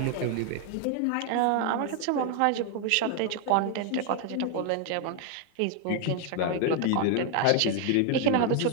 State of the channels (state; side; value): different; both; correlation 0.00